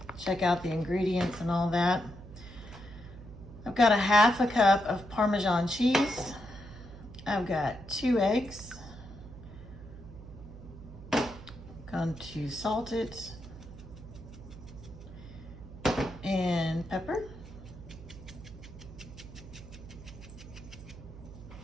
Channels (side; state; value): right; noise; hum, 15 dB below the sound